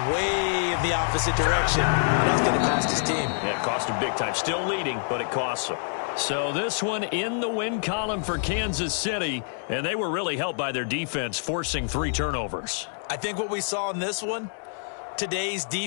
way in the opposite direction, and that's going to cost his team. Yeah, it cost him big time. Still leading, but it costs him. So this one in the win column for Kansas City, and they were really helped by their defense, forcing 3 turnovers. I think what we saw in this one, today's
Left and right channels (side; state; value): right; silent; digital silence